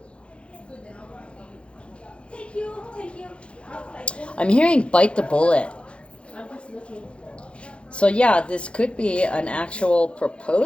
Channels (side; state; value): right; late; 0.059 ms